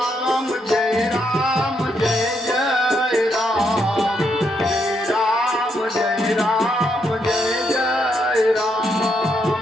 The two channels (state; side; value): normal; both; correlation 0.77